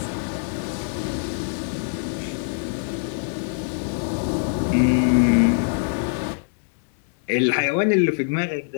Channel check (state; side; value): silent; right; digital silence